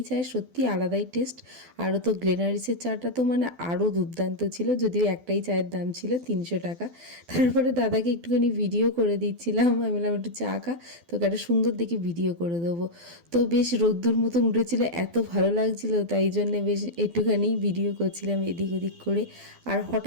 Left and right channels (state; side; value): late; left; 12 ms